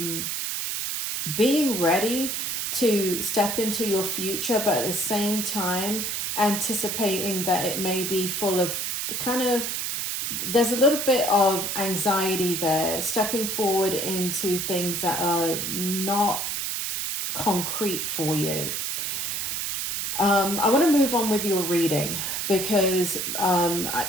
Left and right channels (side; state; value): right; noise; hiss, 2 dB below the sound